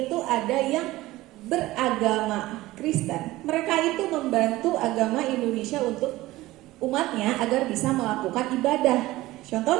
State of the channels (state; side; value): quieter; left; 17.7 dB